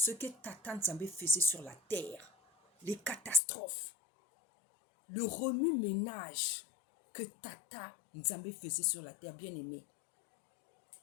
que Tata Nzambe faisait sur la terre, les catastrophes, le remue-ménage que Tata Nzambe faisait sur la terre, bien aimé.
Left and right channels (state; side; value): drops out; right; at 3.4 s